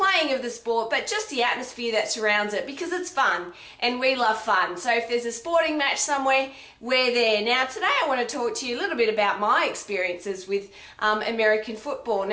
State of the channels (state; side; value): identical; both; correlation 1.00